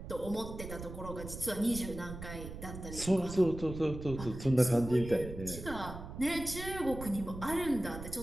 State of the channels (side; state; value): right; noise; rumble, 10 dB below the sound